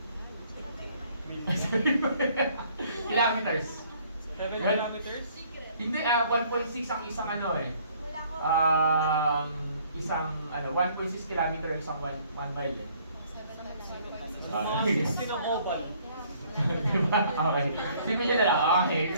Kilometers. 7 kilometers? Hindi, 1.6 ang isang ano eh. Isang 1.6 kilometer isang 1 mile eh. Mga 16 ang oval. Diba? Okay. Sino nyo na lang? Okay.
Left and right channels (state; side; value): inverted; both; correlation -0.61